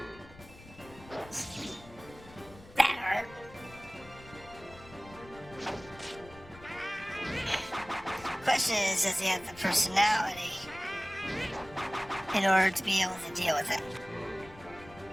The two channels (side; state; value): left; noise; rumble, 20 dB below the sound